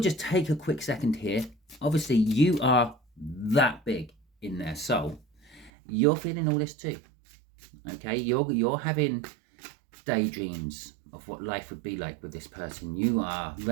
just take a quick second here. Obviously, you are that big in their soul. You're feeling all this too. Okay, you're having daydreams of what life would be like with this person. You are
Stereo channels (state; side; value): drops out; left; at 5.7 s